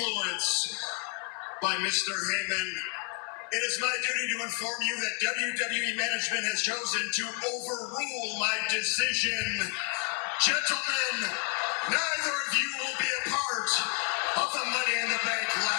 by Mr. Heyman, it is my duty to inform you that WWE management has chosen to overrule my decision. Gentlemen, neither of you will be a part of the Money in the Bank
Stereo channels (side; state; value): right; quieter; 35.8 dB